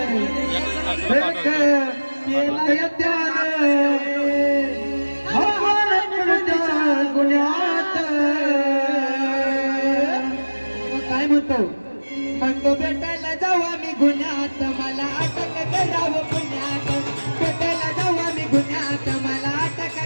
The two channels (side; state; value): both; inverted; correlation -1.00